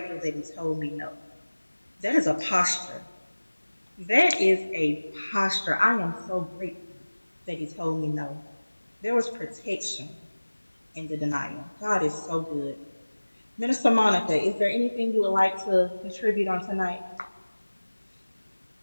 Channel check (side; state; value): both; inverted; correlation -1.00